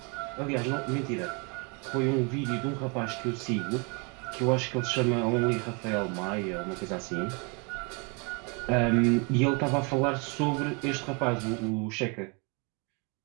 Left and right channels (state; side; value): quieter; left; 32.6 dB